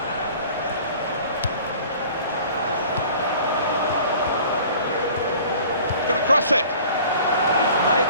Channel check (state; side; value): inverted; both; correlation -0.47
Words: Going to cross it. He's made